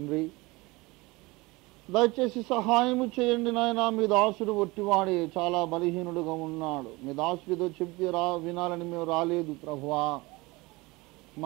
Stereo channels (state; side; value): quieter; left; 23.0 dB